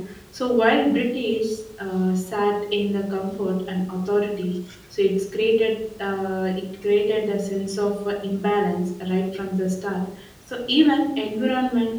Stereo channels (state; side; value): identical; both; correlation 1.00